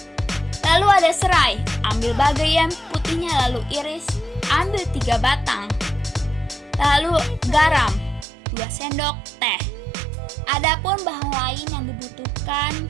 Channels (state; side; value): drops out; left; at 8.2 s